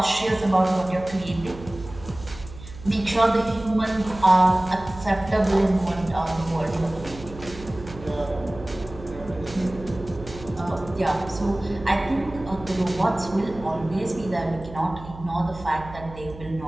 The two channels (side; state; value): right; noise; hum, 15 dB below the sound